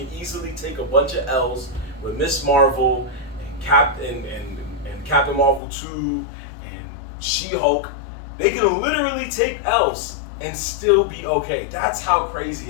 easily take a bunch of L's with Miss Marvel and Captain Marvel 2 and She-Hulk. They can literally take L's and still be okay. That's how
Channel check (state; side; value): drops out; right; at 5.6 s